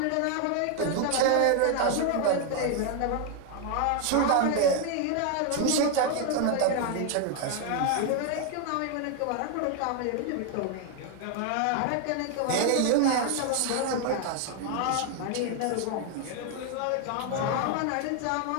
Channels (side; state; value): both; different; correlation 0.01